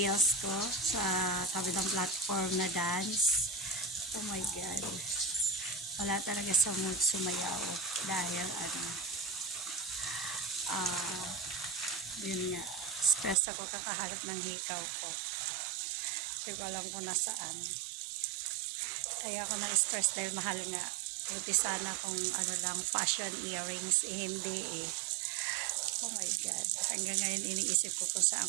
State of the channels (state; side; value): drops out; left; at 13.4 s